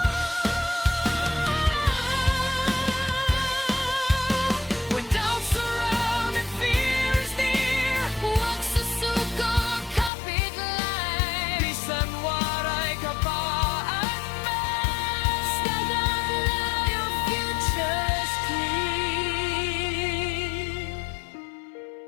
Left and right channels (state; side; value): drops out; right; at 10.1 s